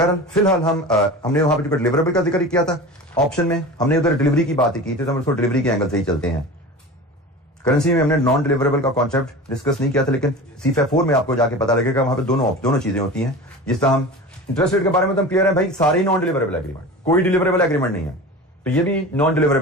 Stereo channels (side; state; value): both; normal; correlation 0.33